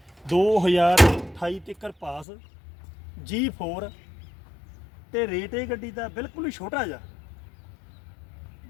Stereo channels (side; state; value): right; drops out; at 2.2 s